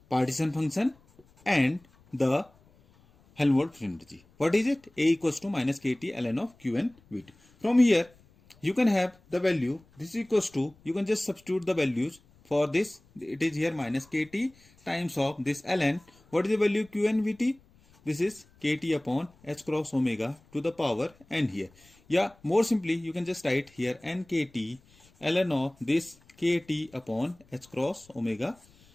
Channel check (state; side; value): noise; left; rumble, 30 dB below the sound